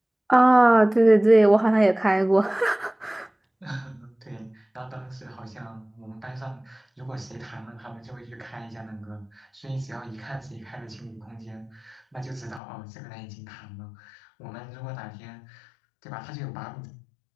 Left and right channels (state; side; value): drops out; right; at 12.6 s